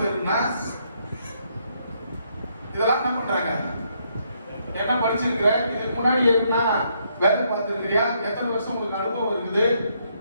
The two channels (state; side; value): inverted; both; correlation -0.73